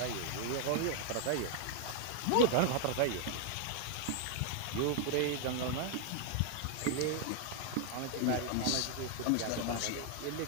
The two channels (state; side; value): different; both; correlation 0.00